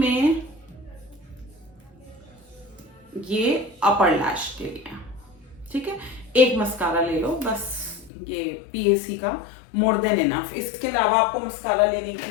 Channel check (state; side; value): drops out; right; at 8.1 s